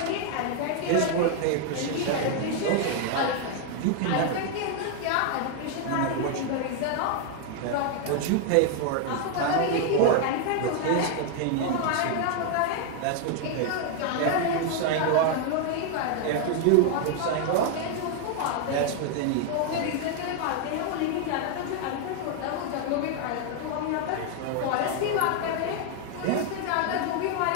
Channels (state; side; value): different; both; correlation 0.00